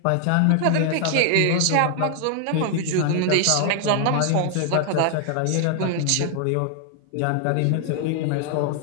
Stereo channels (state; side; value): different; both; correlation 0.00